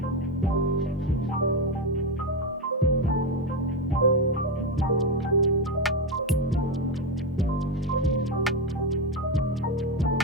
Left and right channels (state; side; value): normal; both; correlation 0.10